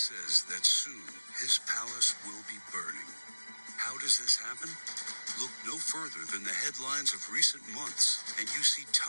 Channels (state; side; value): inverted; both; correlation -1.00